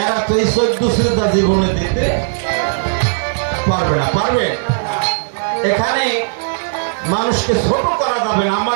এরা তো এই 14 সিজদা জীবনে দিতে পারবে না। পারবে? এখানে মানুষকে ছোট করা যাবে না।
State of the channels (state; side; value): silent; left; digital silence